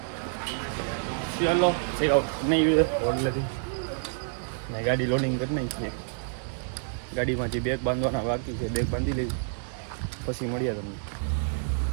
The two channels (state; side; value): silent; left; 59 dB below the other